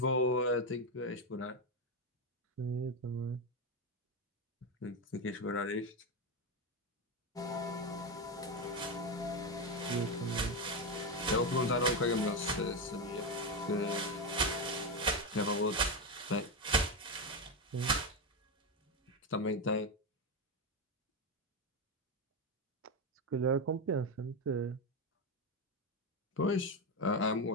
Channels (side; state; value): both; normal; correlation 0.10